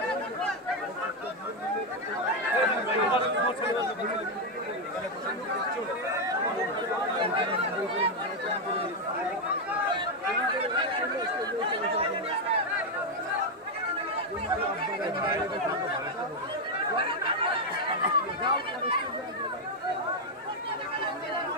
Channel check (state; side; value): normal; both; correlation 0.03